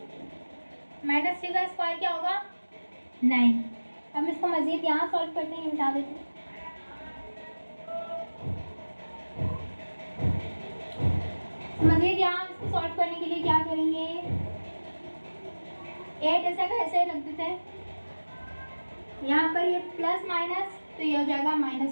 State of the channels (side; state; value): both; inverted; correlation -1.00